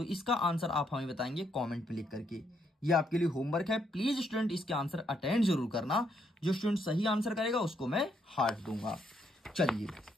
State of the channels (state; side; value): normal; both; correlation 0.74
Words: इसका आंसर आप हमें बताएंगे कमेंट पे लिख करके। ये आपके लिए होमवर्क है, प्लीज स्टूडेंट इसके आंसर अटेंड जरूर करना। जो स्टूडेंट सही आंसर करेगा उसको मैं हार्ट दूंगा। चलिए